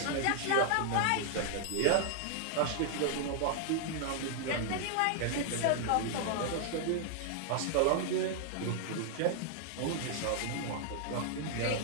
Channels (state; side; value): different; both; correlation 0.00